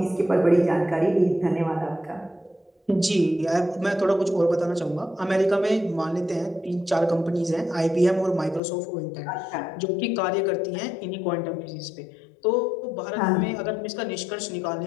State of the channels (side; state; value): right; drops out; at 8.6 s